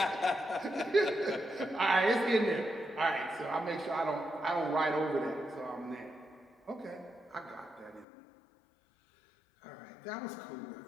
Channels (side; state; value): right; drops out; at 8.1 s